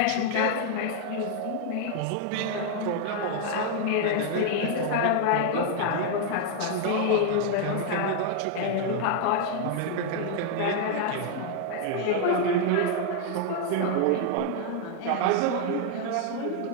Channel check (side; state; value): both; different; correlation 0.00